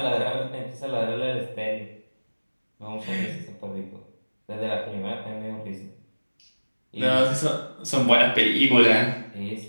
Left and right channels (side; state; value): both; inverted; correlation -1.00